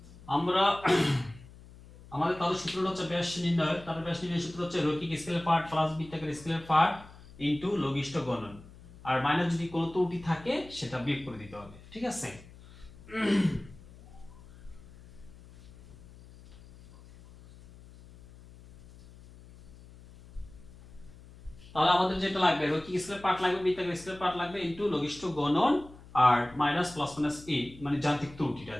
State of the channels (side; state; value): left; noise; hum, 20 dB below the sound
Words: আমরা আমাদের তাহলে সূত্রটা হচ্ছে ব্যাস নির্ণয়, তাহলে ব্যাস নির্ণয়ের সূত্র হচ্ছে রৈখিক স্কেলের পার্ট প্লাস বৃত্তাকার স্কেলের পার্ট ইনটু লঘিষ্ঠ গুণন, আর মাইনাস যদি কোনো ত্রুটি থাকে সেটা বিয়োগ করে দিতে হবে, ঠিক আছে? তাহলে আমাদের যেটা লাগবে রৈখিক স্কেলের পার্ট লাগবে, বৃত্তাকার স্কেলের পার্ট লাগবে ইনটু লঘিষ্ঠ গুণন আর মাইনাস প্লাস মাইনাস এ, মানে যান্ত্রিক ত্রুটিটা,